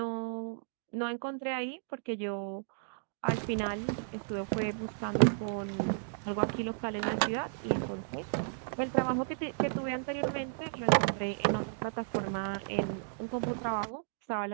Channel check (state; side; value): silent; left; digital silence